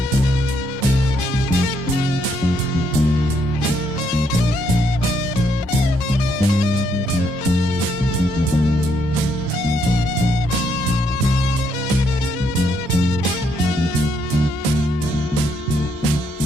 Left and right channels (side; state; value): both; normal; correlation 0.73